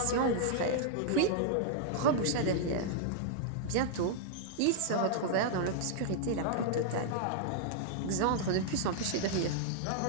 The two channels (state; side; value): different; both; correlation -0.01